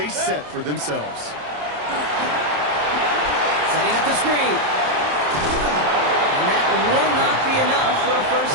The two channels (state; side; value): late; left; 27 ms